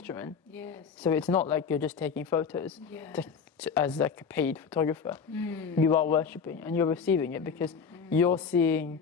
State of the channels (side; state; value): right; quieter; 6.0 dB